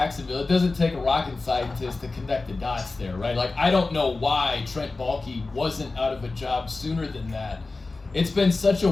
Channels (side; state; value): right; quieter; 3.5 dB